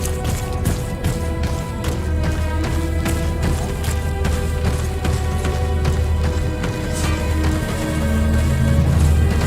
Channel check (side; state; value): both; identical; correlation 1.00